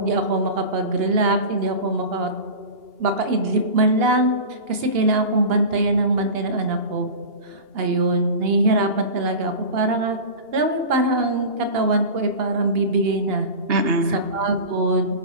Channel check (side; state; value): left; late; 2.8 ms